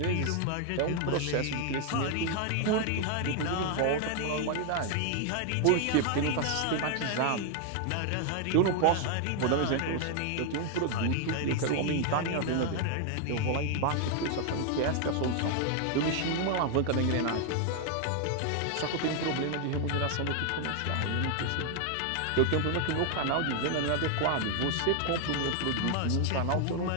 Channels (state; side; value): different; both; correlation 0.01